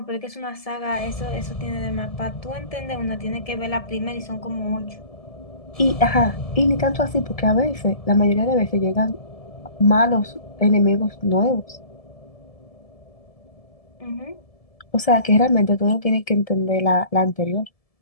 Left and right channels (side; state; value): right; late; 1.7 ms